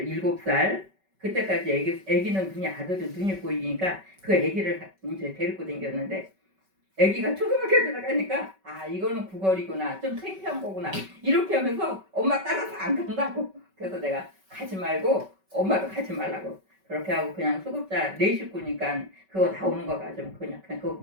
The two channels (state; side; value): late; left; 5.2 ms